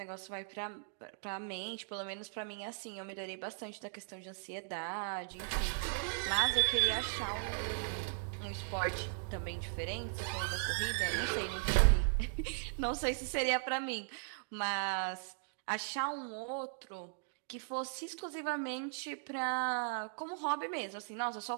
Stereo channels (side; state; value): left; silent; digital silence